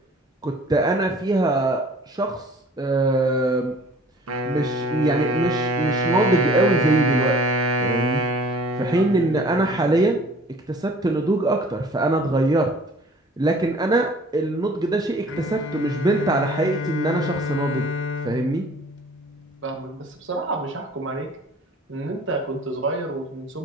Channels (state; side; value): normal; both; correlation 0.51